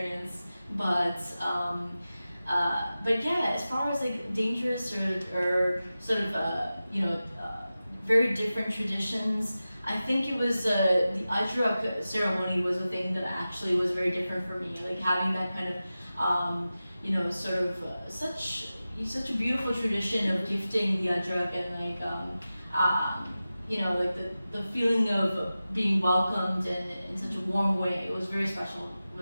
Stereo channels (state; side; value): inverted; both; correlation -0.94